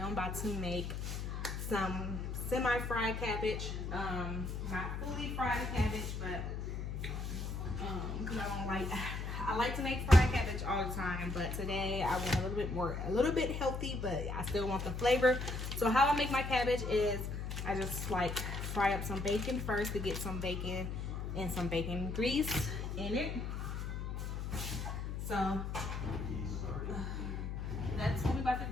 about to make some semi-fried cabbage. Not fully fried cabbage, but because I like to make fried cabbage all the time, but today I went a little bit healthy, but I still want the flavor. So how I make my cabbage is I just like fry up some bacon first to get some bacon and some bacon grease in it. So that's what we're about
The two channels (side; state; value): left; noise; hum, 4 dB below the sound